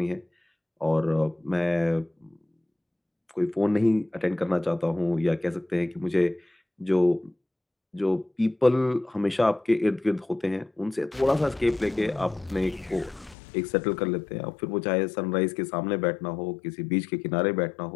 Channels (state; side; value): drops out; right; at 13.4 s